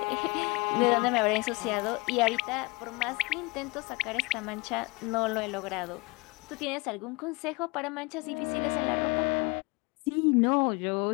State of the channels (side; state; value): right; quieter; 26.6 dB